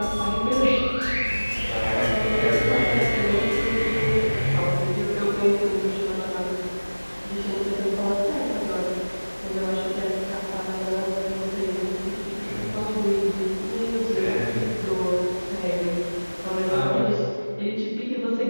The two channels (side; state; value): both; inverted; correlation -1.00